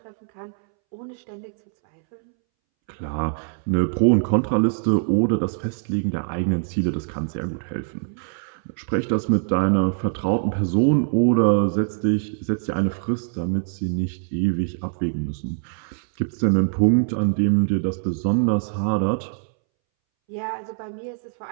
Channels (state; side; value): silent; left; 63 dB below the other